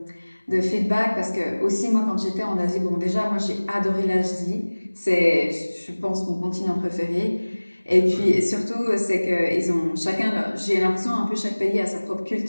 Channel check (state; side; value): inverted; both; correlation -1.00